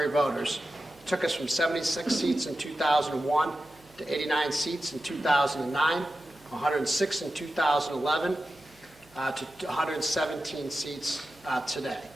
voters took us from 76 seats in 2001 to 89 seats in 2009, 106 in 2011, to 117 seats today.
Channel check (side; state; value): right; noise; hum, 29 dB below the sound